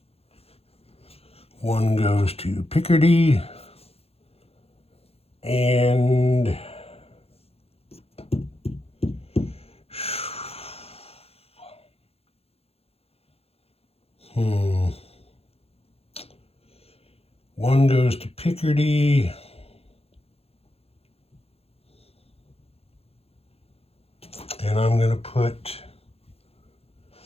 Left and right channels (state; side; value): late; right; 0.29 ms